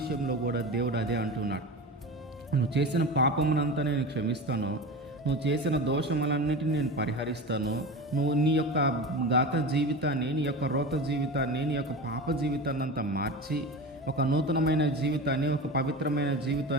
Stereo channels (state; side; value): normal; both; correlation 0.28